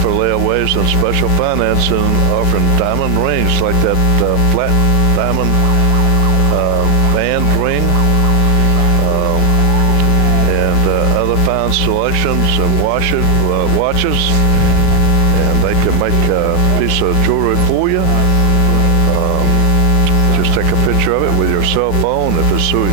layaways and special financing, offering diamond rings like that flat diamond band ring, and other fine selections and watches, and they can make a piece of jewelry for you. Just take a picture of it with your cell phone. If it's too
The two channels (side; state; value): right; late; 12 ms